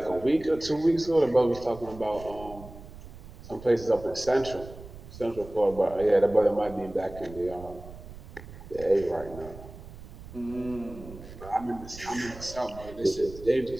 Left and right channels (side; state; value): right; noise; rumble, 15 dB below the sound